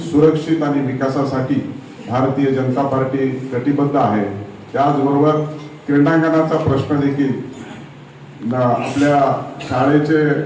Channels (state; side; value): identical; both; correlation 1.00